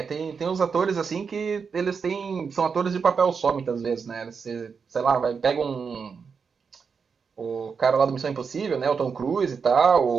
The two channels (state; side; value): quieter; left; 5.8 dB